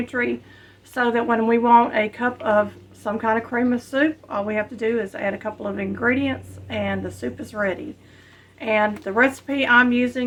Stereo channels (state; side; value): identical; both; correlation 1.00